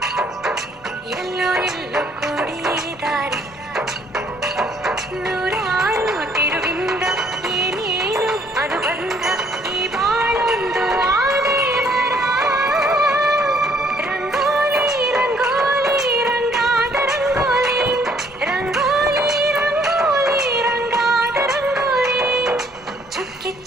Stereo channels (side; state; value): both; normal; correlation 0.64